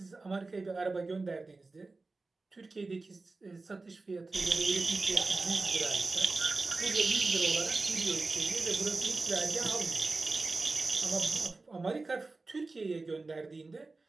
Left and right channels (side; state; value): left; quieter; 3.6 dB